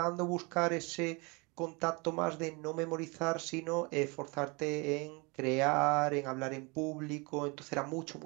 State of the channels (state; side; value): quieter; left; 28.6 dB